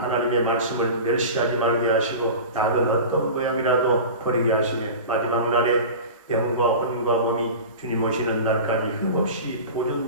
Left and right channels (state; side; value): inverted; both; correlation -0.33